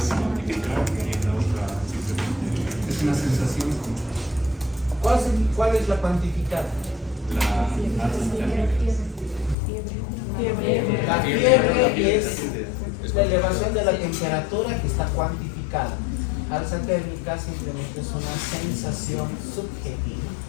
cuantificar y la otra simplemente Es una sensación. ¿Cuál es la cuantificada? la alza térmica. La fiebre es la elevación de la temperatura que está cuantificada. Alza térmica simplemente es una sensación subjetiva.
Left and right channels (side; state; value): right; drops out; at 9.6 s